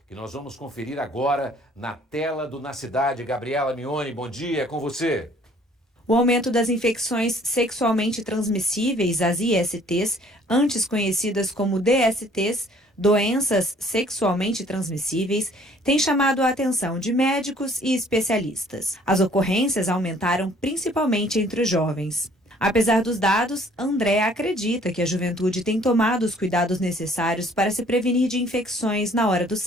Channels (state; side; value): normal; both; correlation 0.58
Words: que nós vamos conferir agora na tela do Na Cidade. Gabriela Mignoni, bom dia, é com você. O aumento das infecções sexualmente transmissíveis, as ISTs, antes conhecidas como DSTs, doenças sexualmente transmissíveis, tem chamado a atenção de médicos e especialistas. As ocorrências aumentaram principalmente entre os jovens. Apesar dos dados, André acredita que a juventude tem tomado os cuidados necessários para se prevenir de infecções na hora do